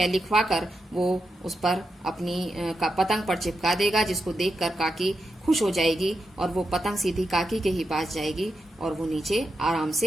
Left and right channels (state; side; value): normal; both; correlation 0.86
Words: लिखवा कर वो उस पर अपनी पतंग पर चिपका देगा, जिसको देखकर काकी खुश हो जाएगी और वो पतंग सीधी काकी के ही पास जाएगी और वो नीचे आराम